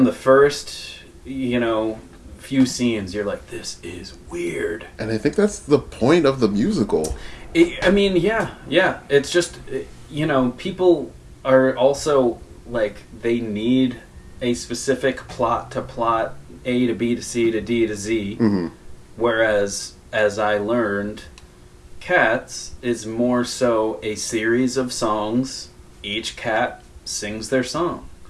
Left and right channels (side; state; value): both; identical; correlation 1.00